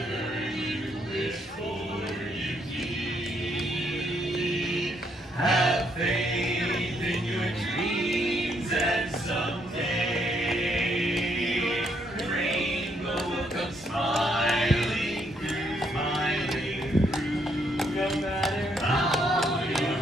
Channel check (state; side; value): normal; both; correlation 0.73